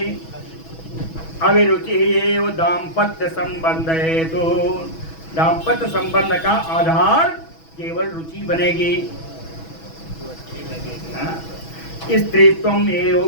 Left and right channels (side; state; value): right; late; 6.2 ms